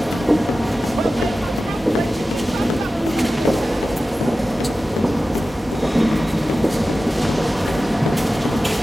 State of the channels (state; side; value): normal; both; correlation 0.94